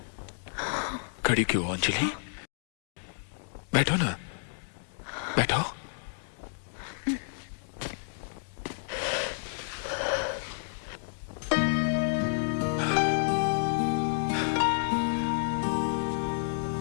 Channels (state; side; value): silent; right; digital silence